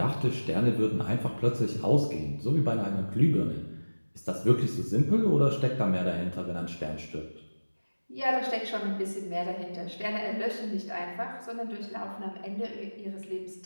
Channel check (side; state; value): both; inverted; correlation -1.00